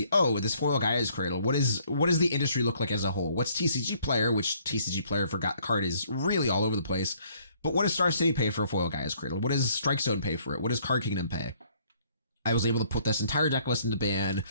oh, this foil Gaia's Cradle. What does the industry look like as a whole? What's TCG Player, which TCG Player forgot the card is really all over the place. But what does Star City pay for a foil Gaia's Cradle? What does Strike Zone pay for it? What does Card Kingdom pay? I was able to put this entire deck list into Ban,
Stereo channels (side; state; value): both; inverted; correlation -0.63